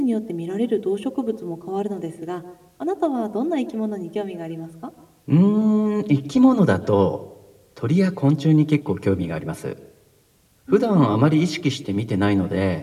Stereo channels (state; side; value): identical; both; correlation 1.00